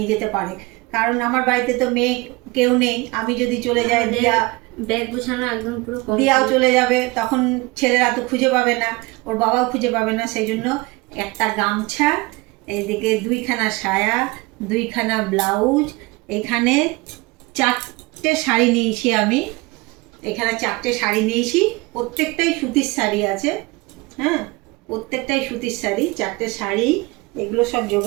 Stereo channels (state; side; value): quieter; left; 23.5 dB